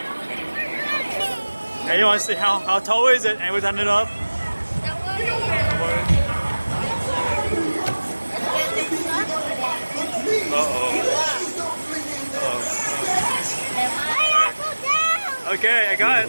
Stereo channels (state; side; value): inverted; both; correlation -1.00